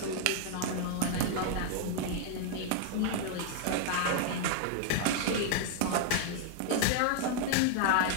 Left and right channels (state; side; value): different; both; correlation 0.00